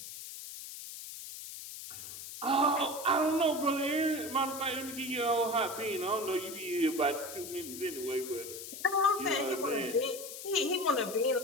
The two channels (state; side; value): noise; left; hiss, 10 dB below the sound